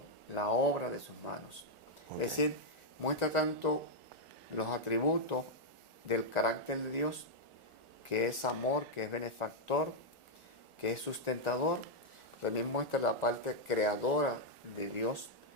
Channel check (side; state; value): left; late; 1.4 ms